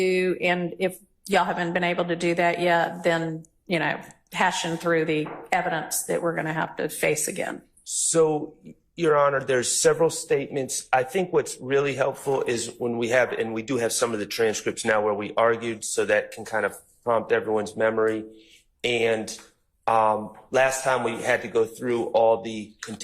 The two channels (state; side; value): identical; both; correlation 1.00